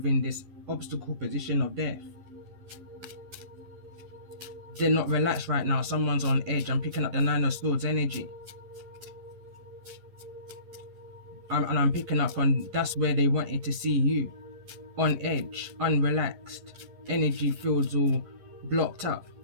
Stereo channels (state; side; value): late; left; 11 ms